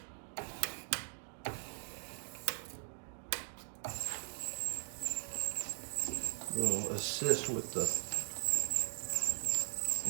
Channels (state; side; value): silent; left; digital silence